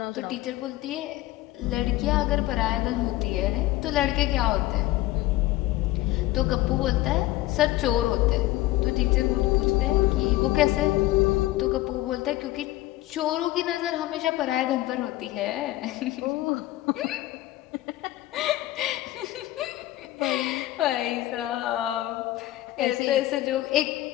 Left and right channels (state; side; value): quieter; right; 16.7 dB